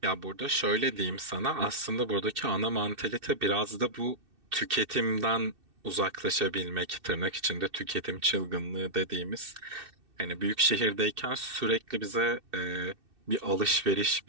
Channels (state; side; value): late; left; 2.6 ms